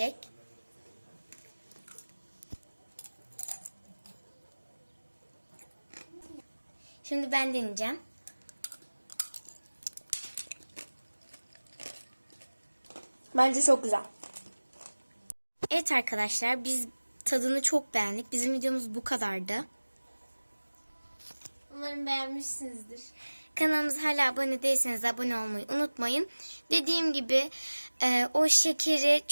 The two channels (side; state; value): both; inverted; correlation -1.00